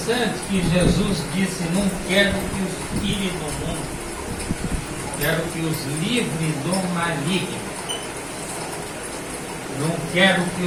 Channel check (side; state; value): both; identical; correlation 1.00